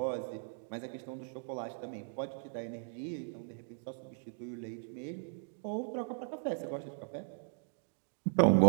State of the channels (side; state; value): left; silent; digital silence